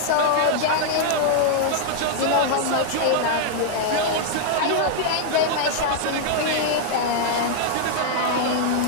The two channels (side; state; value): both; different; correlation -0.01